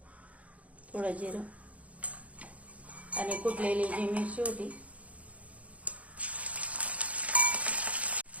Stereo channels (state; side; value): late; left; 0.067 ms